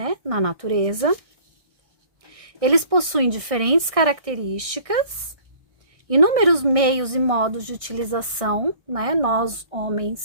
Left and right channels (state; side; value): late; left; 1.6 ms